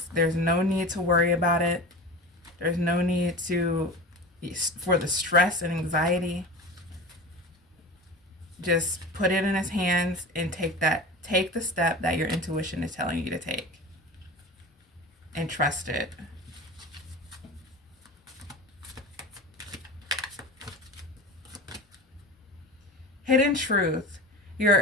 There's no need to worry about it. There's no need for the stress and anxiety. Just put it in his hands and take the step that your intuition is telling you to take. And trust it. Hidden truth.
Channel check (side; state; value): both; normal; correlation 0.31